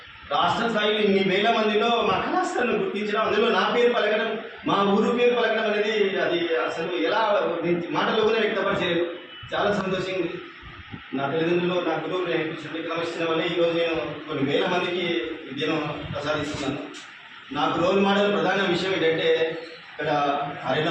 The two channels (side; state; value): both; identical; correlation 1.00